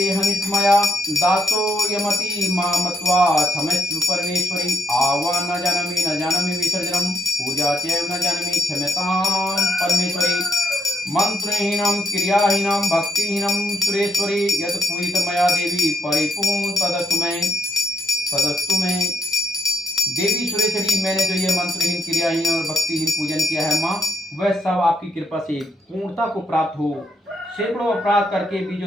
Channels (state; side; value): normal; both; correlation 0.76